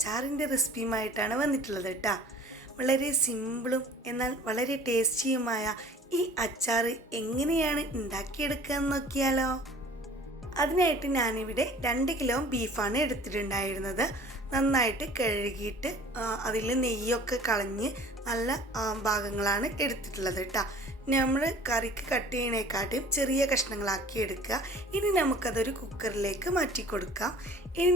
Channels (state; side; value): normal; both; correlation 0.47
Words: റെസിപ്പിയുമായിട്ടാണ് വന്നിട്ടുള്ളത് കേട്ടോ. വളരെ സിമ്പിളും എന്നാൽ വളരെ ടേസ്റ്റിയുമായ ഈ അച്ചാർ എങ്ങനെയാണ് ഉണ്ടാക്കിയെടുക്കുക എന്ന് നോക്കിയാലോ. അതിനായിട്ട് ഞാനിവിടെ 2 കിലോ ബീഫാണ് എടുത്തിട്ടുണ്ടായിരുന്നത്. നന്നായിട്ട് കഴുകിയിട്ട് അതിൽ നെയ്യൊക്കെ കളഞ്ഞ് നല്ല ഭാഗങ്ങളാണ് എടുത്തിട്ടുള്ളത് കേട്ടോ. നമ്മൾ കറിക്ക് കട്ട് ചെയ്യണേക്കാട്ടും ചെറിയ കഷ്ണങ്ങളാക്കി എടുക്കുക. ഇനി നമുക്കതൊരു കുക്കറിലേക്ക് മാറ്റി കൊടുക്കാം. ഇനി